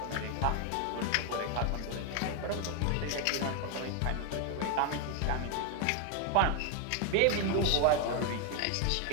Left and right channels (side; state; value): both; different; correlation 0.01